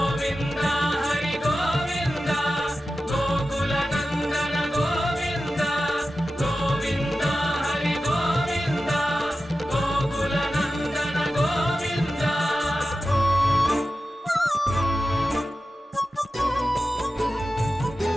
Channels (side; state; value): both; normal; correlation 0.93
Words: హరి గోవింద గోకుల నందన గోవింద గోవింద హరి గోవింద గోకుల నందన గోవింద